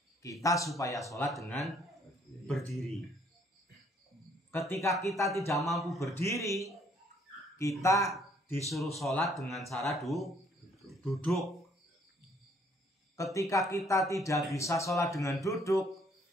kita supaya sholat dengan berdiri. Ketika kita tidak mampu berdiri, kita disuruh sholat dengan cara duduk. Ketika kita tidak bisa sholat dengan duduk,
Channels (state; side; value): normal; both; correlation 0.64